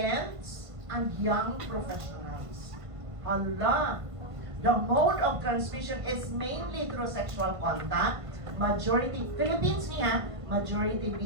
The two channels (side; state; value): left; late; 1.5 ms